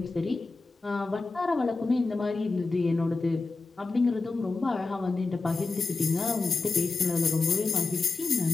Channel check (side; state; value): right; quieter; 3.8 dB